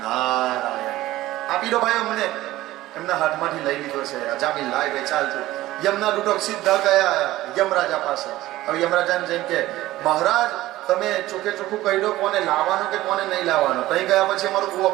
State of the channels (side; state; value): left; quieter; 16.3 dB